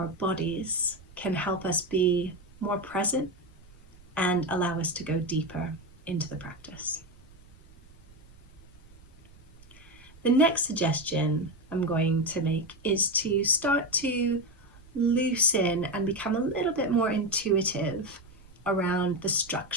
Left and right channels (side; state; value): right; noise; rumble, 24 dB below the sound